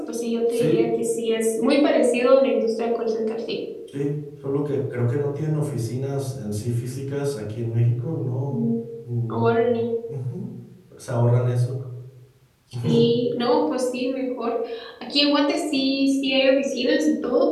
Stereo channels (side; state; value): both; identical; correlation 1.00